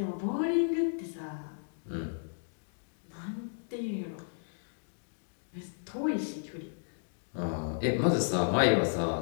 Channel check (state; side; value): silent; right; digital silence